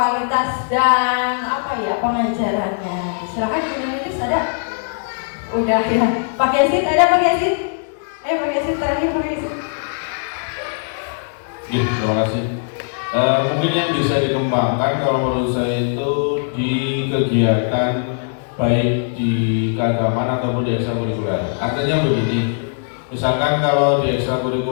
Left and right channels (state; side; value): silent; right; digital silence